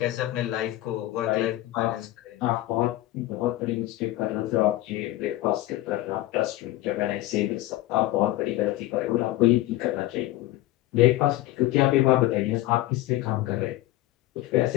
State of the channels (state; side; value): quieter; right; 16.3 dB